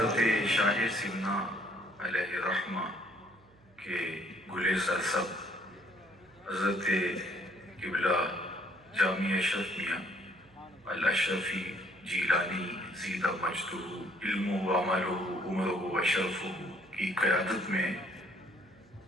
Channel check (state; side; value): noise; right; hum, 30 dB below the sound